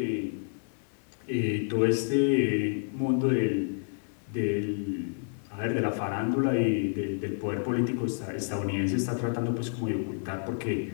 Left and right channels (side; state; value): right; silent; digital silence